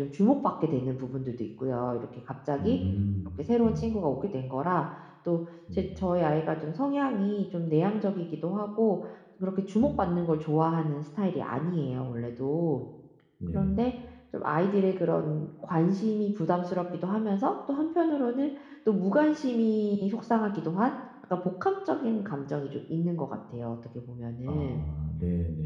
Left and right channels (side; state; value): both; identical; correlation 1.00